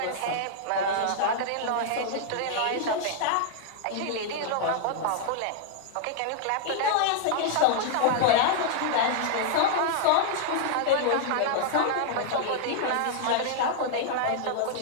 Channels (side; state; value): both; different; correlation -0.01